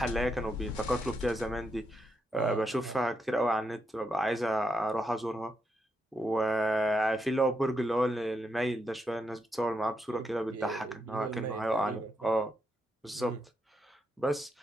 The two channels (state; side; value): normal; both; correlation 0.82